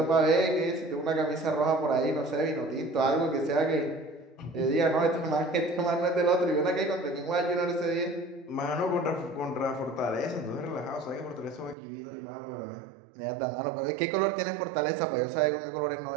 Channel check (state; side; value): drops out; left; at 11.8 s